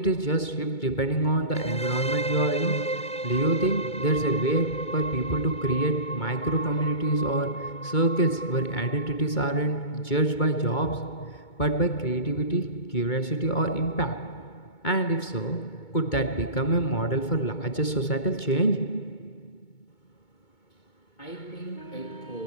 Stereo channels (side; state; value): right; late; 2.2 ms